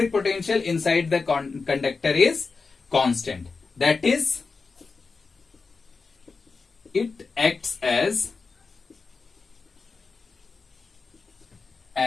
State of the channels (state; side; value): quieter; right; 4.5 dB